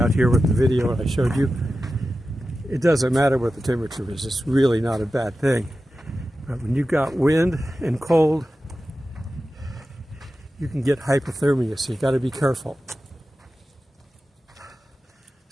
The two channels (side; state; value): both; normal; correlation 0.93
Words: here with the video I showed you, it doesn't matter what the temperature is. It's really not a bad thing. But when you've got wind and cold, you can get hypothermia, so you got to be careful.